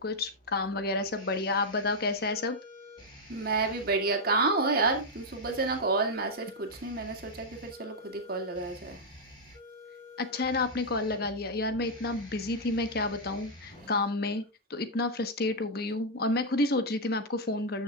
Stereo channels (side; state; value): both; normal; correlation -0.02